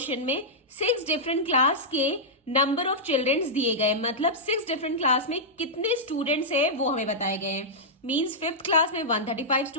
में 6 डिफरेंट क्लास के नंबर ऑफ चिल्ड्रंस दिए गए, मतलब 6 डिफरेंट क्लास में कितने स्टूडेंट्स है वो हमें बताए गए हैं। मींस 5th क्लास में 135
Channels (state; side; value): normal; both; correlation -0.10